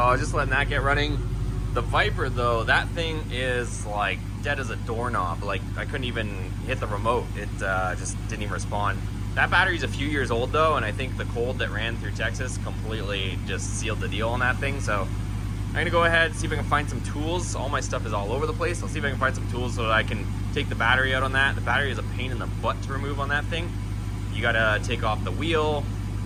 was just letting that get running. The Viper though, that thing is like dead as a doorknob. Like I couldn't even hit the remote. It just didn't even respond. That battery's a few years old though, and I think the cold that ran through Texas completely just sealed the deal on that thing. So I'm gonna go ahead and see if I can find some tools. All my stuff is all over the place. I'll see if I can find some tools so that I can take the battery out on that. The battery is a pain in the butt to remove on that thing. You gotta take off the wheel,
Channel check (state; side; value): identical; both; correlation 1.00